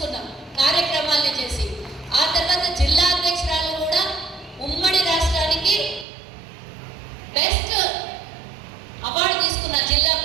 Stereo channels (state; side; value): drops out; left; at 6.1 s